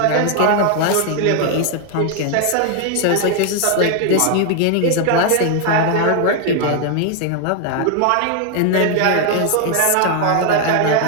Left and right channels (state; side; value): different; both; correlation 0.00